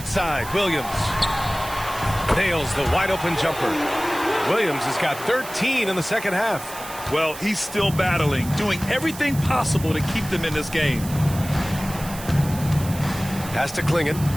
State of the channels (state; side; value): noise; right; hiss, 13 dB below the sound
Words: Williams. Nails the wide-open jumper. Williams has got 13 in the second half. Well, he's still battling, doing everything possible to keep them in this game. Pass to Klingon.